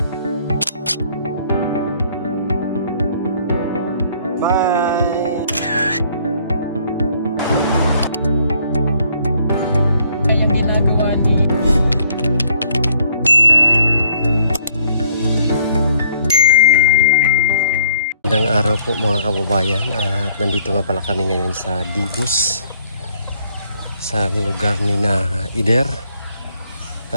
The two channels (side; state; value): both; inverted; correlation -0.63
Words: Bye! Ang ginagawa ni Magandang araw po mga kababayan, at nandito nga pala kami ngayon sa Digos, sa lugar ni na Ider